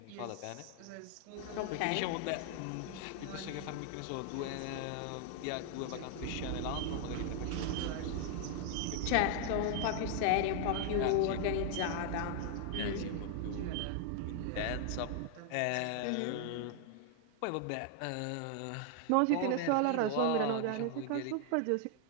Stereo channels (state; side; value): different; both; correlation 0.00